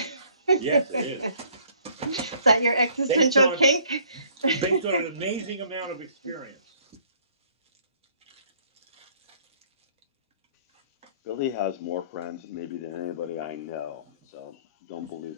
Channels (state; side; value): inverted; both; correlation -0.60